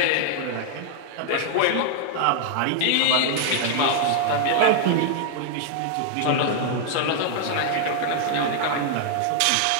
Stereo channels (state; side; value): different; both; correlation 0.00